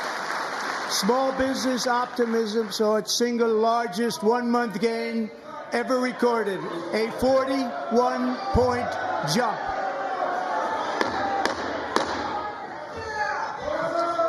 small business optimism saw its single largest one-month gain ever recorded, a 41-point jump.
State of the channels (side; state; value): both; identical; correlation 1.00